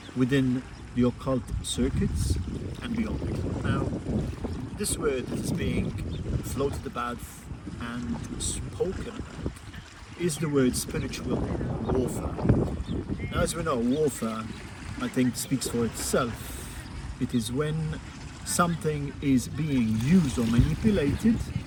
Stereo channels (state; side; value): identical; both; correlation 1.00